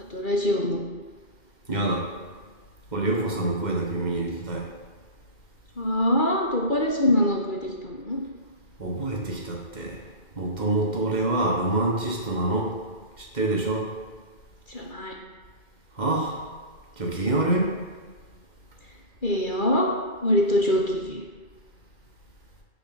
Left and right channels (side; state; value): right; late; 2.1 ms